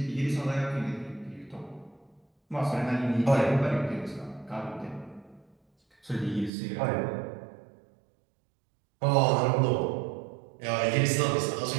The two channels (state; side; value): drops out; left; at 6.5 s